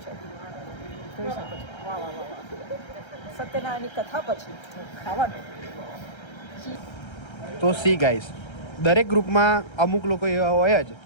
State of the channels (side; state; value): right; late; 1.3 ms